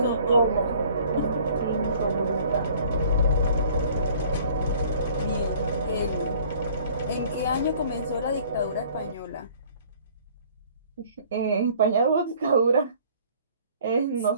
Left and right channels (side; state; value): both; inverted; correlation -0.54